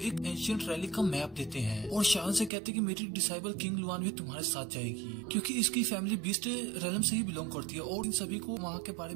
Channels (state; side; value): drops out; left; at 2.5 s